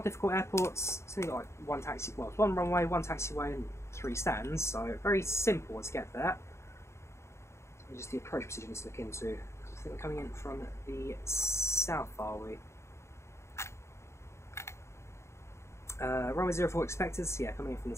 a difficult airport, it's only got like one taxi, well, it's one runway, one taxiway, and 3 stands, so very simple to get there. So just the approach procedure needs to look into. I think we're coming in from the south, are we? Runway 04 expected, so yeah, coming in from the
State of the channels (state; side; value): late; right; 0.13 ms